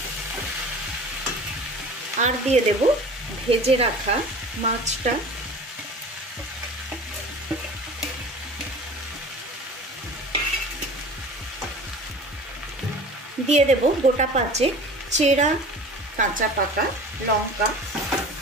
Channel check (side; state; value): both; normal; correlation 0.40